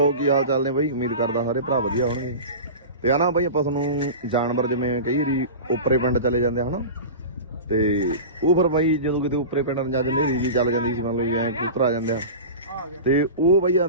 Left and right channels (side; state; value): both; inverted; correlation -0.30